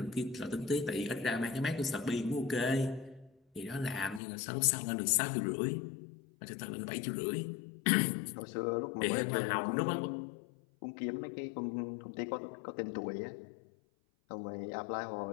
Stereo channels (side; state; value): right; drops out; at 4.2 s